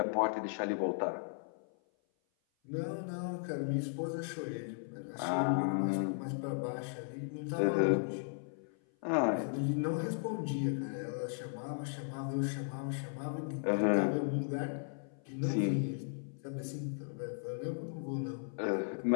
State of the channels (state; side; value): silent; right; 54 dB below the other